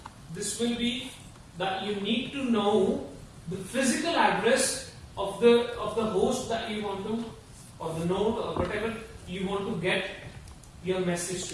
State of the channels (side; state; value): both; identical; correlation 1.00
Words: this will be that you need to know the physical address of the host that you want to, or the node or whatever you want to get your message